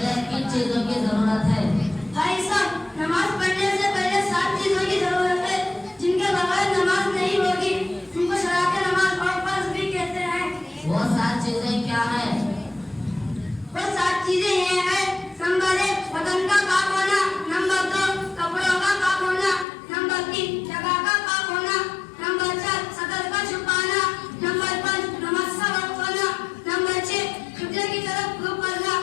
किन चीजों की जरूरत है? भाई साहब, नमाज पढ़ने से पहले 7 चीजों की जरूरत है जिनके बगैर नमाज नहीं होगी। उनको शराके नमाज और फर्ज भी कहते हैं। वो 7 चीजें क्या है? वो 7 चीजें ये हैं। नंबर 1 बदन का पाक होना। नंबर 2 कपड़ों का पाक होना। नंबर 3 जगह का पाक होना। नंबर 4 सतर का छुपाना। नंबर 5 नमाज का वक्त होना। नंबर 6 किबले की तरफ रुख करना।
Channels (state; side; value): drops out; right; at 19.7 s